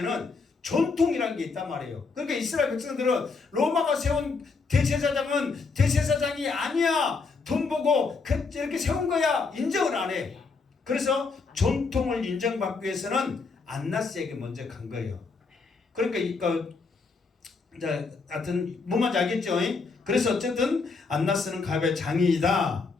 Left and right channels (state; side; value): quieter; right; 4.5 dB